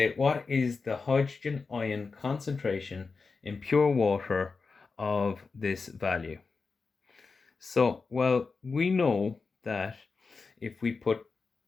what is the hydrogen ion concentration in pure water of this value? So, well, we know that if we put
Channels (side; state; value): right; quieter; 4.5 dB